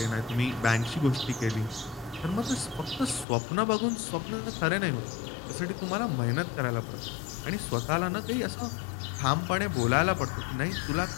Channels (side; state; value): right; drops out; at 3.2 s